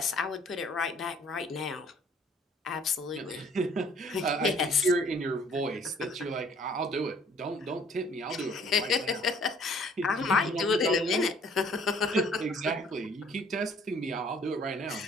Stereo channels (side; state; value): both; normal; correlation 0.57